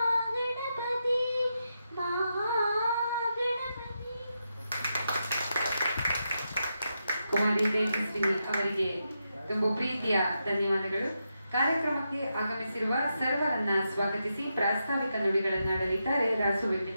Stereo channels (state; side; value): inverted; both; correlation -0.85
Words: ಮಹಾಗಣಪತಿ. ಕುಮಾರಿ ತೇಜಸ್ವಿನಿ ಅವರಿಗೆ ತುಂಬ ಪ್ರೀತಿಯ ಧನ್ಯವಾದಗಳು. ಕಾರ್ಯಕ್ರಮಕ್ಕೆ ಆಗಮಿಸಿರುವ ಸರ್ವರನ್ನ ಸ್ವಾಗತಿಸಿ ಪ್ರಾಸ್ತಾವಿಕ ನುಡಿಗಳನ್ನಾಡಲಿದ್ದಾರೆ ರಾಸು